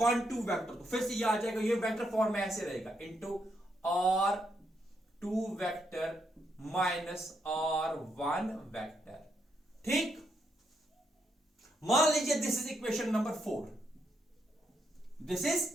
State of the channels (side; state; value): both; normal; correlation 0.78